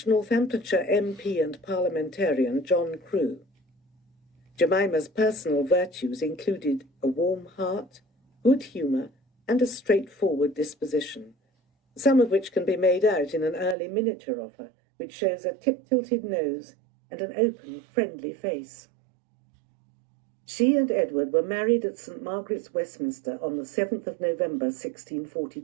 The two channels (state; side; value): drops out; left; at 13.8 s